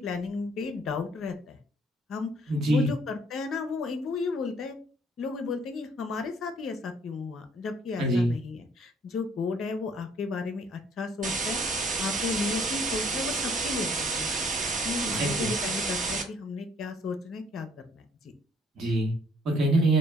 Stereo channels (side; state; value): both; normal; correlation 0.62